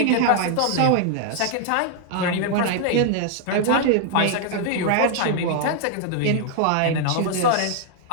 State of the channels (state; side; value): different; both; correlation 0.00